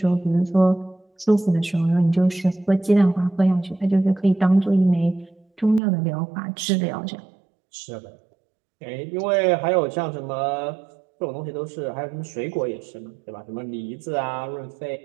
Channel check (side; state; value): left; drops out; at 5.8 s